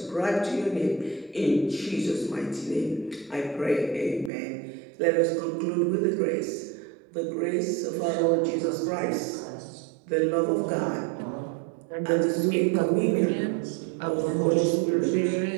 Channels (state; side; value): drops out; left; at 4.3 s